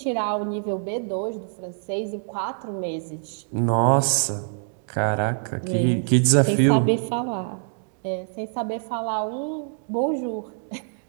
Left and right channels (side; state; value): left; silent; 58 dB below the other